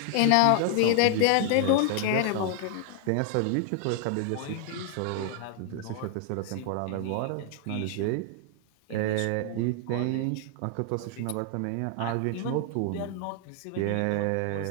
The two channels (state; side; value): different; both; correlation 0.00